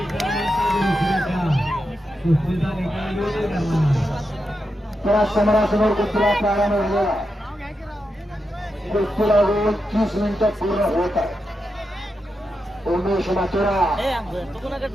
त्या समोरासमोर कुस्तीला प्रारंभ झालेला. कुस्तीला 30 मिनिटं पूर्ण होत आहे. उमेश माथुरा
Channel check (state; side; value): normal; both; correlation 0.87